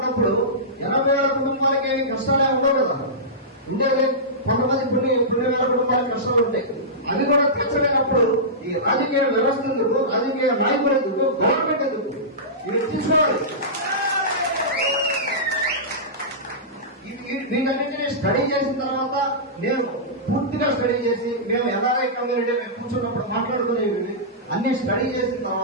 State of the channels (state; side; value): normal; both; correlation -0.17